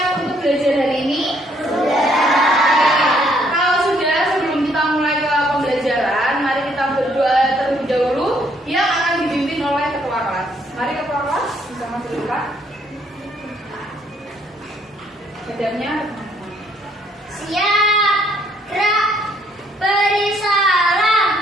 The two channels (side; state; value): both; normal; correlation 0.67